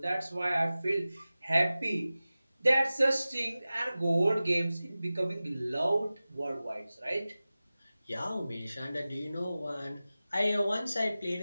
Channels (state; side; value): inverted; both; correlation -0.96